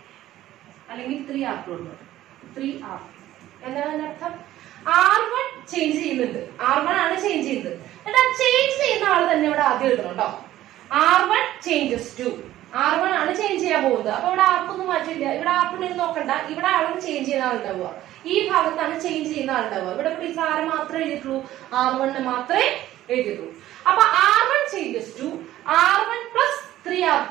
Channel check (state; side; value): quieter; left; 14.1 dB